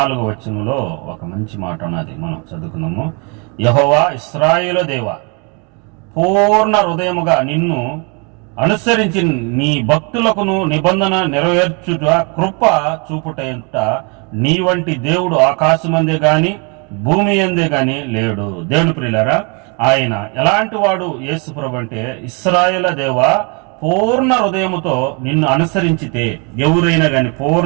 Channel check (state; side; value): quieter; left; 33.6 dB